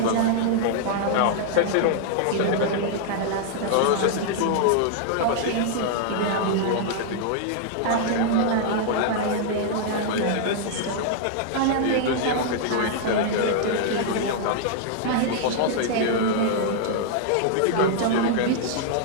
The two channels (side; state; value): both; different; correlation -0.01